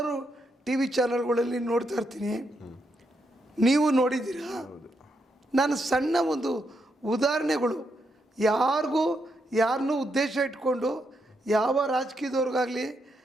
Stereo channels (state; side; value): normal; both; correlation 0.80